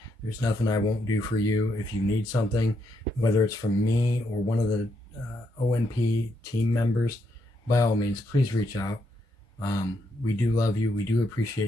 There's nothing I won't do for you. If you need something, whether it's from me or one of the ONP team members, by all means, please reach out. We do love you. We do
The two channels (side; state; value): both; normal; correlation 0.78